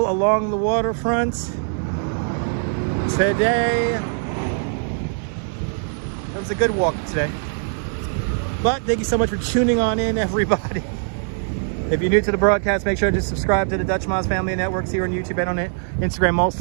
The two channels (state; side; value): silent; left; 64 dB below the other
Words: along the waterfront today. It was a good walk today. But thank you so much for tuning on in, everybody. If you're new to the broadcast, make sure to subscribe to the Dutch Moz Family of Networks here on YouTube and on Instagram, all